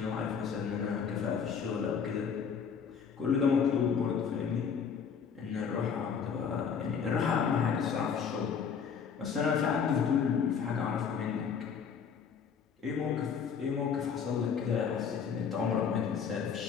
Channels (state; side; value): quieter; right; 6.7 dB